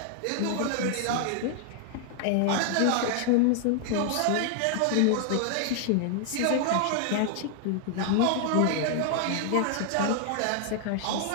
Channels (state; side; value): different; both; correlation 0.00